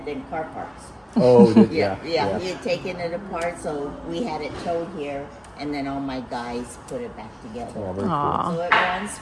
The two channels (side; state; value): both; identical; correlation 1.00